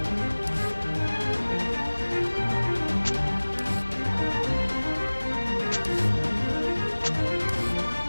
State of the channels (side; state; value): both; inverted; correlation -1.00